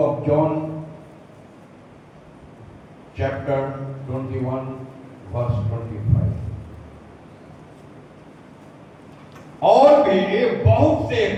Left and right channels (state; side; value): identical; both; correlation 1.00